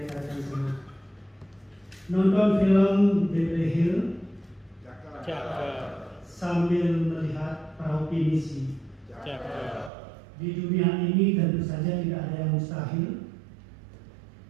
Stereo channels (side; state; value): left; drops out; at 9.9 s